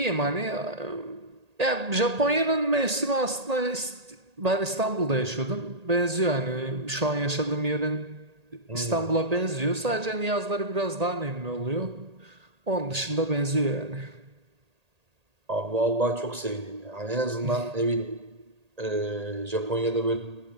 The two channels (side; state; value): left; late; 1.8 ms